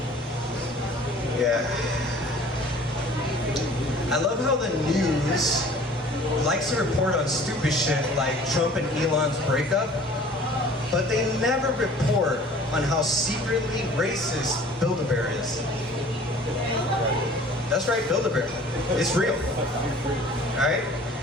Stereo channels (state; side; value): normal; both; correlation 0.49